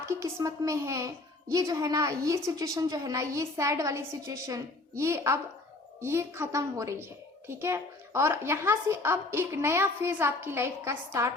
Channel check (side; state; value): right; quieter; 3.1 dB